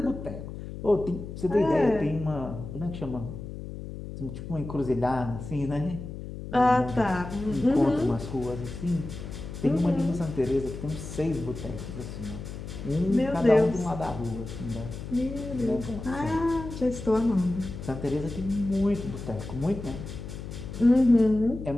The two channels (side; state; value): left; noise; hum, 9 dB below the sound